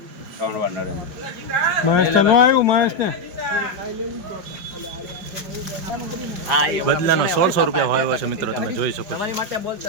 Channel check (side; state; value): left; late; 5.3 ms